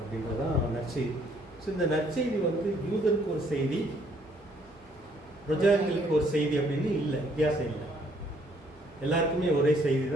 அப்படின்றதான் நற்செய்தி. ஸோ இந்த நற்செய்தி வந்து யூதருக்கு ஒரு செய்தி, பிரஜாதிகளுக்கு ஒரு செய்தி அப்படின்னு இல்லை, வித்தியாசம் இல்லை. எல்லாருக்குமே ஒரே செய்தி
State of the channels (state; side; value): normal; both; correlation 0.65